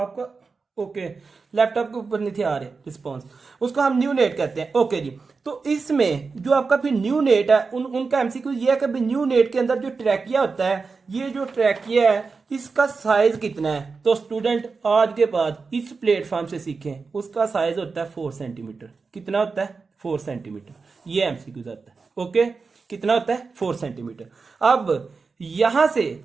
ओके, लैपटॉप के ऊपर नहीं थे आ रहे रिस्पॉन्स, उसको हम न्यू नेट कहते हैं। ओके जी, तो इसमें जो आपका फिर न्यू नेट है, उनका एमसीक्यू ये है कि न्यू नेट के अंदर जो ट्रैकिया होता है, ये जो ट्रैकिया है इसका साइज कितना है। तो स्टूडेंट आज के बाद इस प्लेटफॉर्म से सीखें, उसका साइज होता है 4 सेंटीमीटर। कितना होता है, 4 सेंटीमीटर, ये एमसीक्यू आता है। ओके, कितना होता है, 4 सेंटीमीटर। अब यहां से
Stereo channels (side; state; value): left; quieter; 4.6 dB